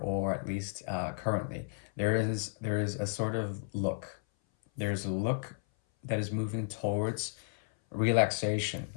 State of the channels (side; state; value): right; silent; 56 dB below the other